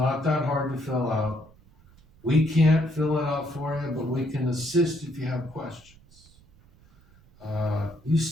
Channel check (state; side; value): noise; right; rumble, 27 dB below the sound